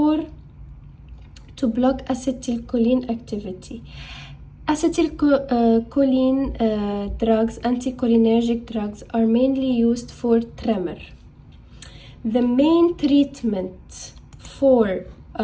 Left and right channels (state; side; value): identical; both; correlation 1.00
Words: to block acetylcholine activity. Acetylcholine drugs, anticholinergic drugs, are mainly used for tremor. The main treatment for